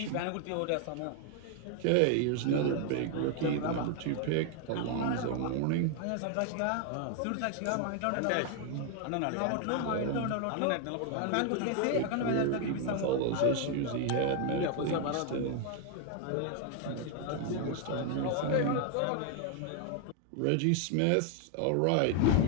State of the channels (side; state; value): both; different; correlation 0.00